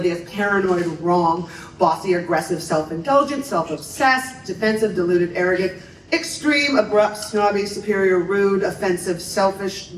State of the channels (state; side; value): identical; both; correlation 1.00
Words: paranoid, wrong, bossy, aggressive, self-indulgent, self-obsessed, defensive, deluded, arrogant, extreme, abrupt, snobby, superior, rude, offensive, selfish,